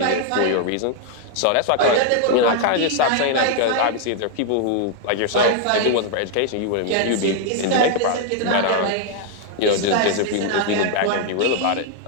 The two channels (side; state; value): both; different; correlation 0.00